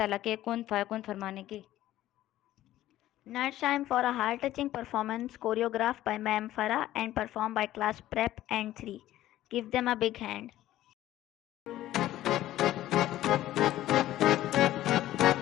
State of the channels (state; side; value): quieter; right; 14.2 dB